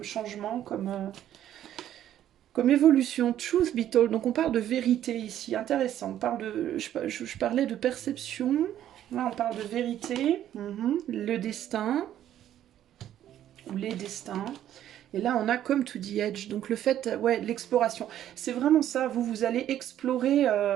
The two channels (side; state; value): left; quieter; 11.5 dB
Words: changement, comme évolution? Truth be told. Donc on parle de vérité ici, intéressant. On parle je parlais de perception. Là, on parle de vérité. Le destin. Ou les destins. Et là, on a comme to the edge. Donc le fait, ouais, l'exploration. C'est vraiment ça. Vous allez explorer